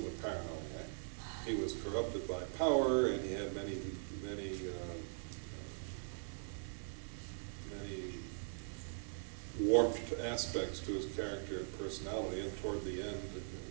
a paranoid. He was corrupted by power, and he had many warped aspects to his character and personality, and toward the end,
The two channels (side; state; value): left; silent; 50 dB below the other